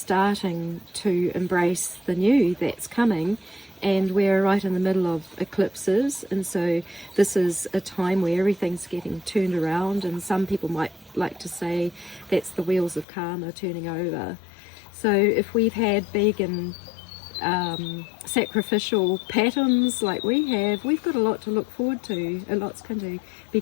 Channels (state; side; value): drops out; right; at 13.1 s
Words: to embrace the new that's coming. And we're right in the middle of eclipses, and so this is a time where everything's getting turned around, and some people might like to say that's the wheels of karma turning over. So if we've had big and sacrificial patterns like we have, we've got a lot to look forward to. A lot's going to be